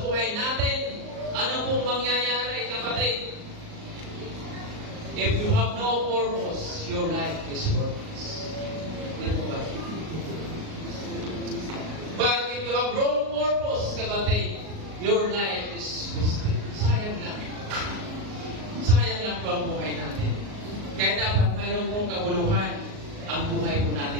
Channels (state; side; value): late; left; 38 ms